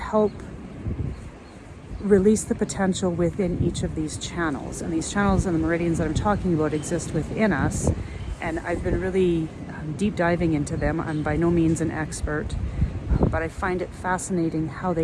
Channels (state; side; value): identical; both; correlation 1.00